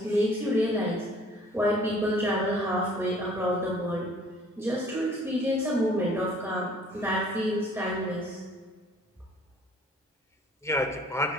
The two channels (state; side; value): normal; both; correlation 0.55